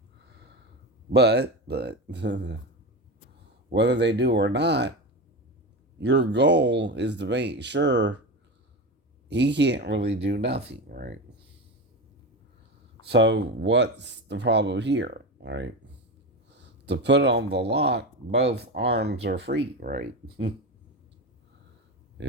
But whether they do or not, your goal is to make sure he can't really do nothing, right? So what's the problem here, right? To put on the lock, both arms are free, right?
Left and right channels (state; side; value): normal; both; correlation 0.22